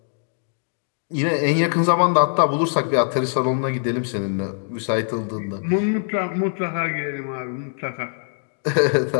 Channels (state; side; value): silent; right; digital silence